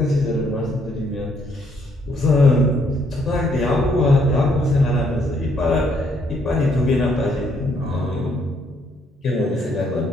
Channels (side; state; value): both; normal; correlation 0.70